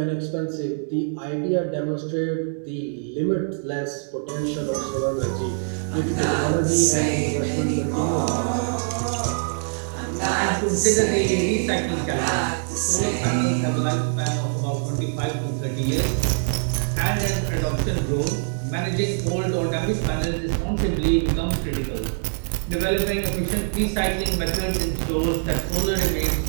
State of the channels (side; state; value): left; silent; digital silence